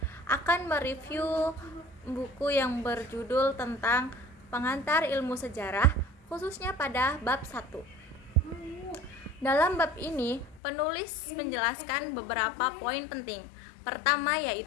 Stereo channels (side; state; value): right; drops out; at 10.6 s